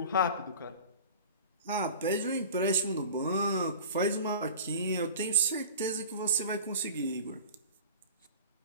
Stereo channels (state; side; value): inverted; both; correlation -0.38